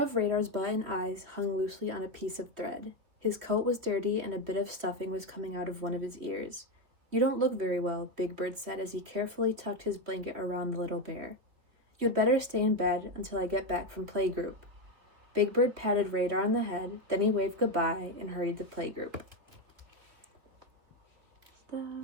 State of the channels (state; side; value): late; left; 3.3 ms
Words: Radar's button eyes hung loosely on a piece of thread. His coat was dirty, and a bit of stuffing was coming out of one of his ears. "You don't look very well," Big Bird said as he carefully tucked his blanket around the little bear. "You'd better stay in bed until I get back from playgroup." Big Bird patted Radar on the head, then he waved goodbye and hurried to playgroup.